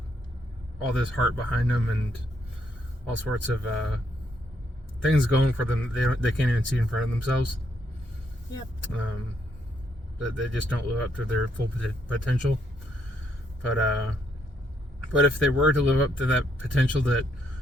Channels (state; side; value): normal; both; correlation 0.74